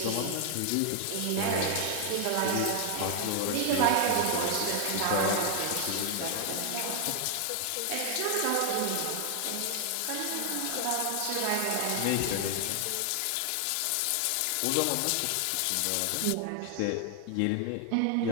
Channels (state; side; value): different; both; correlation 0.00